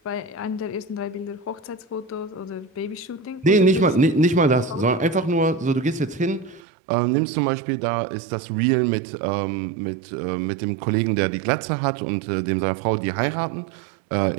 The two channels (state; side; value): drops out; left; at 6.6 s